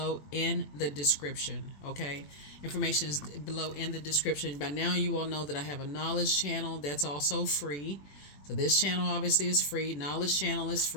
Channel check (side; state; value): right; late; 21 ms